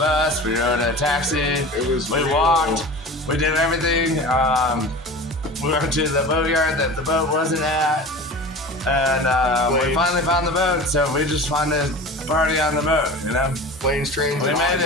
we rode a taxi, we walked, we did everything. We went to the boatyard that the boat wasn't at, and we finally found the boat, so we just wanted to party on the boat, you know? Planes, trains, We and made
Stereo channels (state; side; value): normal; both; correlation 0.35